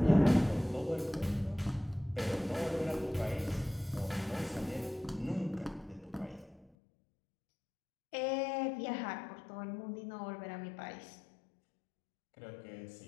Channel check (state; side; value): drops out; right; at 6.7 s